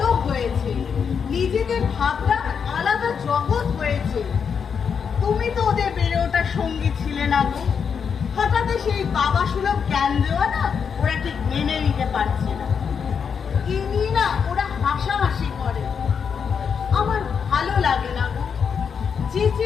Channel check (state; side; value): quieter; right; 6.6 dB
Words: হয়েছে, নিজেদের ভাবনা আলাদা জগৎ হয়েছে। তুমি তো ওদের বেড়ে ওঠার সঙ্গী ছিলে না গো। হঠাৎ সেই বাবা সুলভ জ্ঞান দেওয়া না ওরা ঠিক মেনে নিতে পারছে না। কি নিয়ে না ওরা হাসাহাসি করে। আমার ভালো লাগে না গো। যে